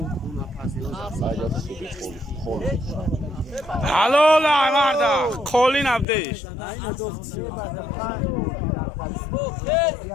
هلو لا مردا کلی نبدیش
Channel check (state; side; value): drops out; right; at 6.1 s